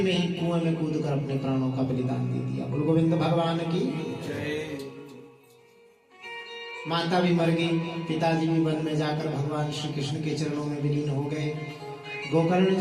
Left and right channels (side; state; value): both; identical; correlation 1.00